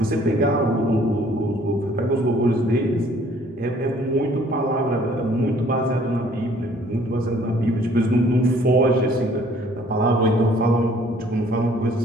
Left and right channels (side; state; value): both; normal; correlation 0.58